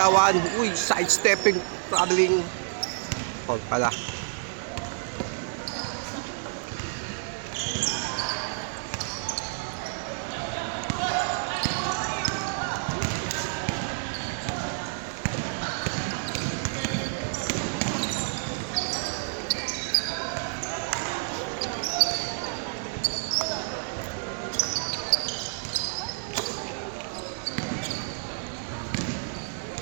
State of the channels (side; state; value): left; silent; digital silence